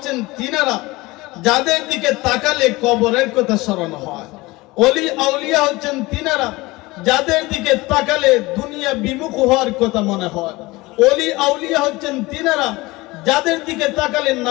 তিনারা যাদের দিকে তাকালে কবরের কথা স্মরণ হয়। ওলি আউলিয়া হচ্ছেন তিনারা যাদের দিকে তাকালে দুনিয়া বিমুখ হওয়ার কথা মনে হয়। ওলি আউলিয়া হচ্ছেন তিনারা যাদের দিকে তাকালে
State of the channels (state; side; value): quieter; right; 21.4 dB